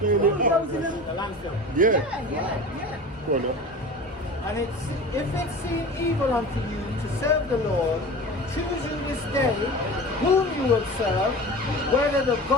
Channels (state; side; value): normal; both; correlation 0.35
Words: it up. Bulldozing them. The landfill. Yeah. Yeah. Go on now. And if it seem evil unto you to serve the Lord, choose you this day whom you will serve, whether the